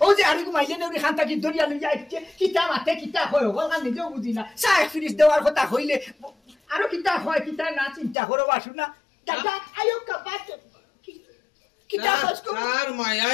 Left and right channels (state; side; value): drops out; right; at 8.2 s